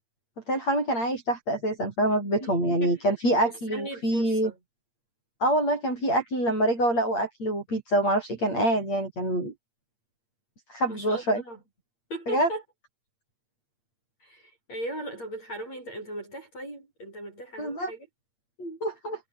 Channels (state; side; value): late; right; 8.6 ms